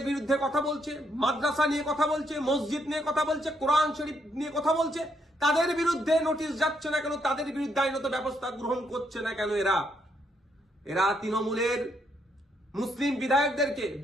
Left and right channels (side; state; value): both; normal; correlation 0.75